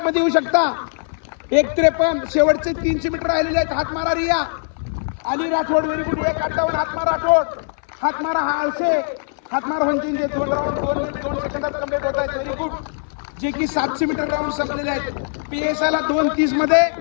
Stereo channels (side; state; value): right; silent; 60 dB below the other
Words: मध्ये येऊ शकता। 1:53 शेवटचे 300 मीटर राहिलेले आहेत, हात मारा रिया, अली राठोड व्हेरी गुड 1:58 हातमार राठोड हातमारा हा आळसे हातमार वंचित 2 राऊंड 2 सेकंदात कंप्लीट होत आहेत व्हेरी गुड जे की 700 मीटर राऊंड संपलेले आहेत पीएसआय ला 2:30 मध्ये